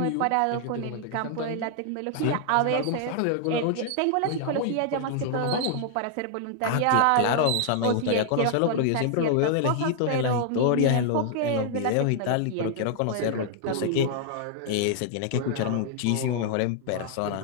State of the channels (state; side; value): different; both; correlation -0.01